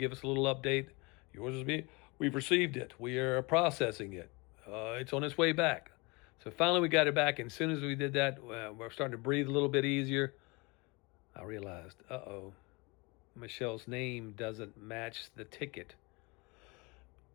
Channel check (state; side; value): quieter; right; 27.2 dB